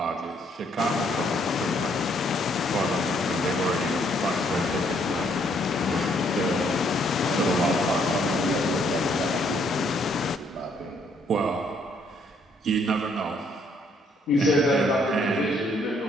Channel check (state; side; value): normal; both; correlation 0.68